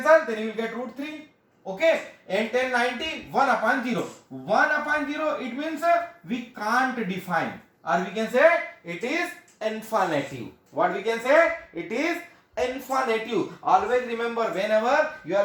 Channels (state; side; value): identical; both; correlation 1.00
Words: then you will get root 3. Okay, and tan 90, 1 upon 0. 1 upon 0, it means we can't define, or we can say it is infinitive. What we can say? It is infinitive. Always remember, whenever you